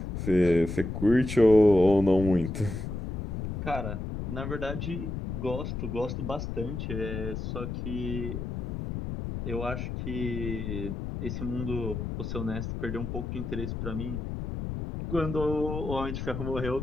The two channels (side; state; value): left; noise; rumble, 5 dB below the sound